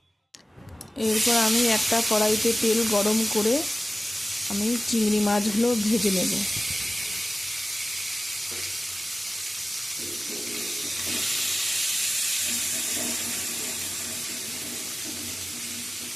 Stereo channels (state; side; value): normal; both; correlation 0.96